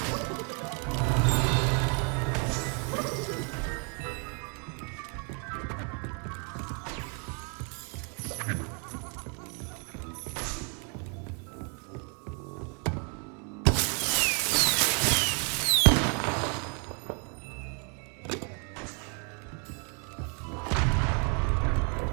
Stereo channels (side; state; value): left; quieter; 37.3 dB